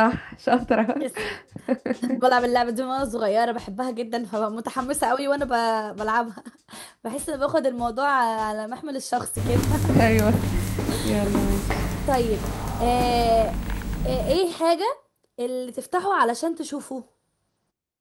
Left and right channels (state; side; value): identical; both; correlation 1.00